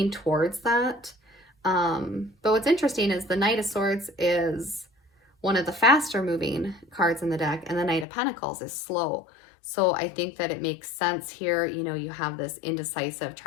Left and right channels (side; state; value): right; drops out; at 8.1 s